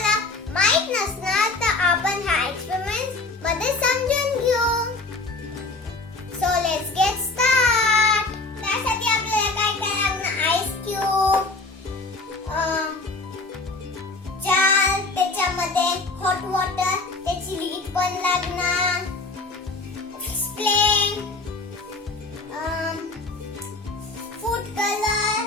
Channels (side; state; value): right; quieter; 3.4 dB